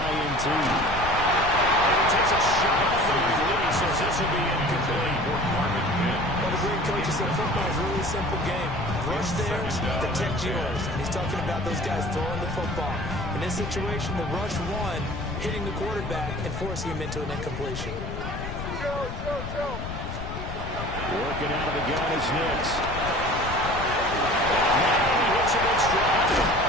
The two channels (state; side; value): noise; left; rumble, 7 dB below the sound